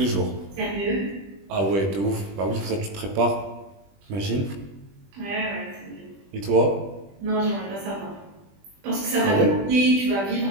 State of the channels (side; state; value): left; late; 20 ms